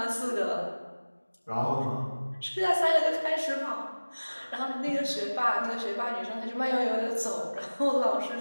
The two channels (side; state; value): both; inverted; correlation -1.00